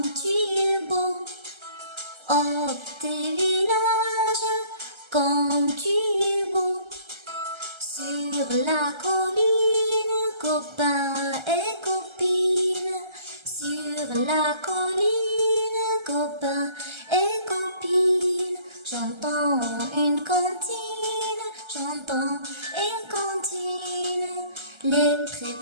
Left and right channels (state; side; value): late; left; 1.3 ms